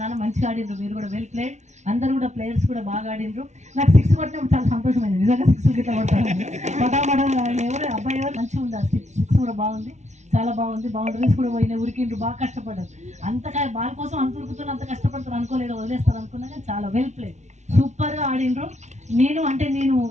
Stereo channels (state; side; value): late; left; 0.33 ms